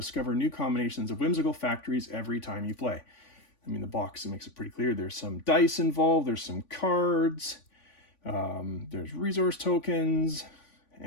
new combinations of whimsical factories every time you play. I mean, the box makes it pretty clear. There's some dice involved, there's some cards, there's resource tokens,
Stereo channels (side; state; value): right; late; 3.5 ms